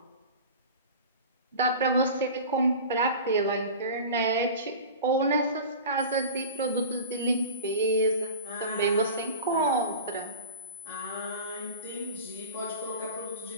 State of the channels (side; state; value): both; inverted; correlation -0.35